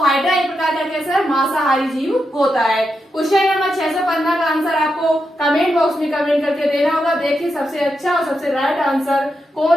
हाइड्रा एक प्रकार का कैसा है? मांसाहारी जीव होता है। क्वेश्चन नंबर 615 का आंसर आपको कमेंट बॉक्स में कमेंट करके देना होगा। देखिए सबसे अच्छा और सबसे राइट आंसर कौन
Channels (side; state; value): both; normal; correlation 0.86